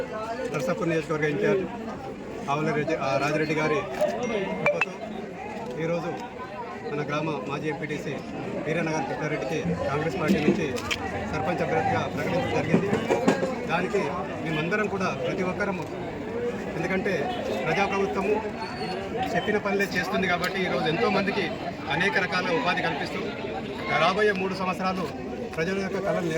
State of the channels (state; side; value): identical; both; correlation 1.00